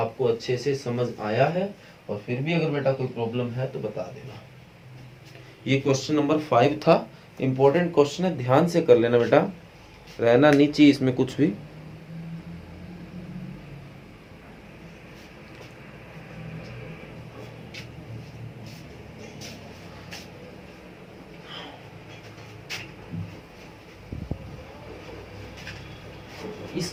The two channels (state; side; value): identical; both; correlation 1.00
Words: अच्छे से समझ आया है, और फिर भी अगर बेटा कोई प्रॉब्लम है तो बता देना। ये क्वेश्चन नंबर 5 था, इंपॉर्टेंट क्वेश्चन है, ध्यान से कर लेना बेटा, रहना नहीं चाहिए इसमें कुछ भी।